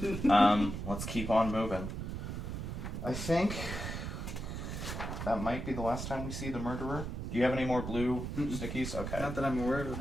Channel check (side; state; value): right; noise; rumble, 5 dB below the sound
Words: Let's keep on moving. I think that might be the last time we see the murderer. Do you have any more blue stickies? Okay. Not that I'm aware of.